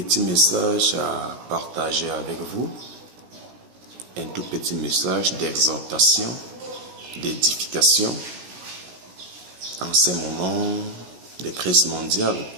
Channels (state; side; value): late; left; 17 ms